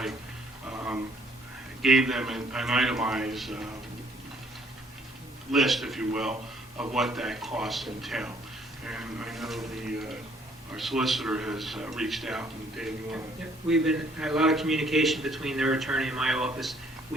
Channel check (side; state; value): both; normal; correlation 0.63